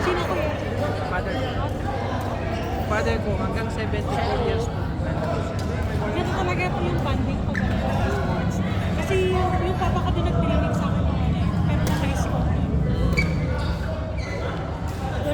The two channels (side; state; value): both; identical; correlation 1.00